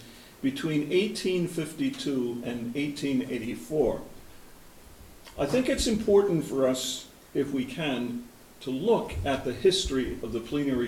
between 1852 and 1884. I think it's important for us, if we can, to look at the history of the Plenary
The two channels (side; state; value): both; identical; correlation 1.00